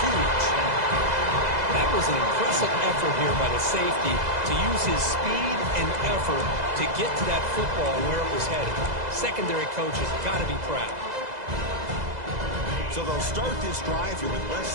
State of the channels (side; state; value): left; late; 2.0 ms